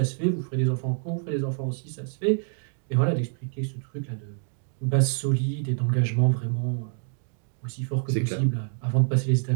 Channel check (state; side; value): silent; left; 60 dB below the other